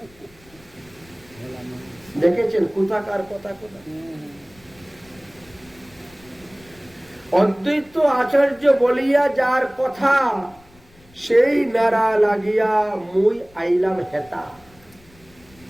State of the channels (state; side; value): noise; left; rumble, 27 dB below the sound